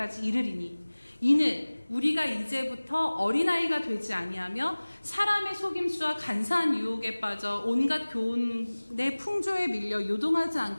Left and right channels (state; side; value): inverted; both; correlation -1.00